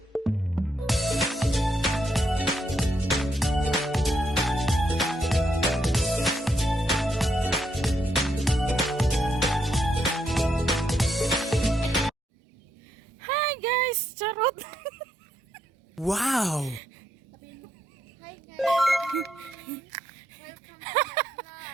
guys! Charot! Wow! Hi guys! Welcome to my vlog.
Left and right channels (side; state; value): both; normal; correlation 0.77